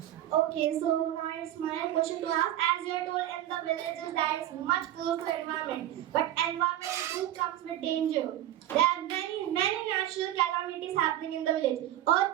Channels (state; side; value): quieter; left; 12.8 dB